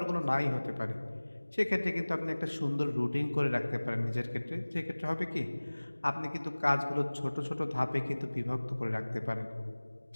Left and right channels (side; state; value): both; inverted; correlation -1.00